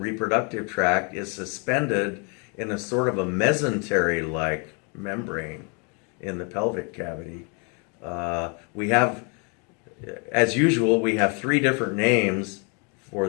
tract, is suspended in a sort of a mesentery-like membrane in the pelvic cavity. We have, as usual, we have 3 different names for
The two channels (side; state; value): right; quieter; 35.5 dB